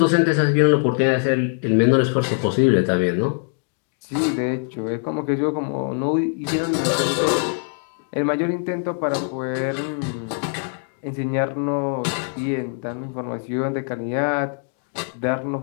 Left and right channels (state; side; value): silent; right; 56 dB below the other